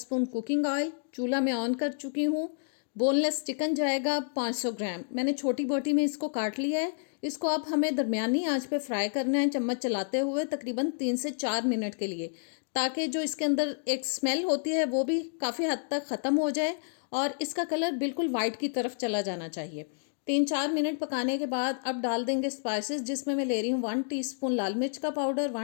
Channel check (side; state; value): right; silent; digital silence